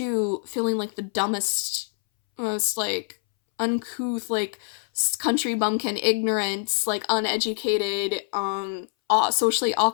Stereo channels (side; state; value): right; silent; 62 dB below the other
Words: feeling like the dumbest, most like uncouth, like country bumpkin, ignorant, like uneducated, socially